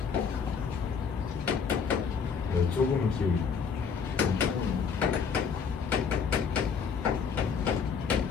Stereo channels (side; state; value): right; quieter; 6.2 dB